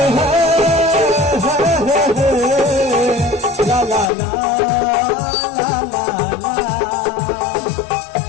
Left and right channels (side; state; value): right; drops out; at 4.1 s